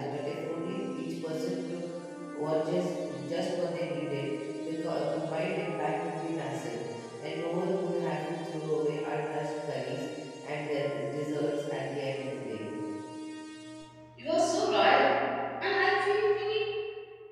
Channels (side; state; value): both; identical; correlation 1.00